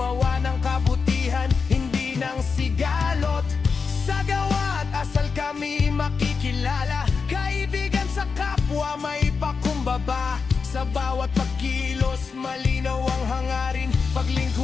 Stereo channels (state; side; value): quieter; right; 5.2 dB